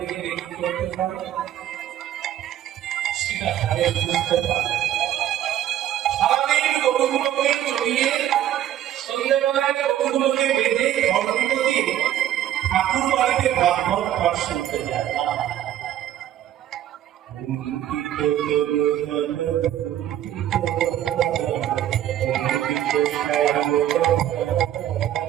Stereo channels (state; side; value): quieter; left; 11.7 dB